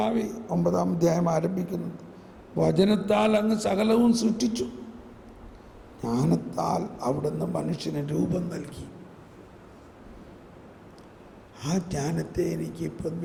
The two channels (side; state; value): both; identical; correlation 1.00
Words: 9-ാം അധ്യായം ആരംഭിക്കുന്നത്, വചനത്താൽ അങ്ങ് സകലവും സൃഷ്ടിച്ചു, ജ്ഞാനത്താൽ അവിടുന്ന് മനുഷ്യന് രൂപം നൽകി. ആ ജ്ഞാനത്തെ എനിക്ക് ഇപ്പം